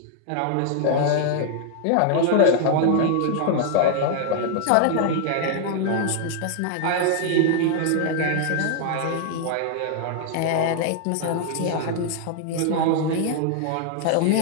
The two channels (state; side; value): different; both; correlation 0.00